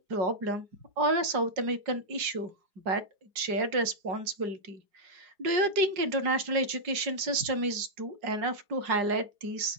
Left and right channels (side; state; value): left; late; 4.9 ms